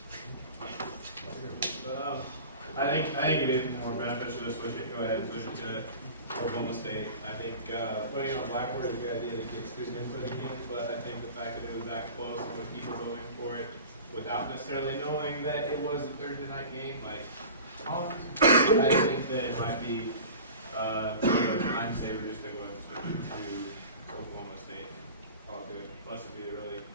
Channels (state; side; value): inverted; both; correlation -0.38